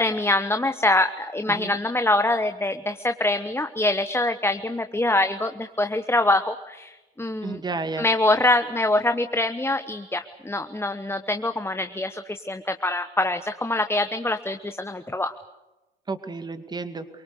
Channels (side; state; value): both; normal; correlation 0.56